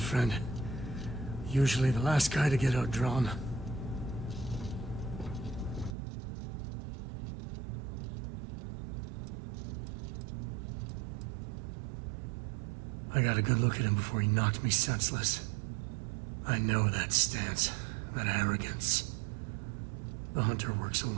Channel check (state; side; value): drops out; left; at 6.0 s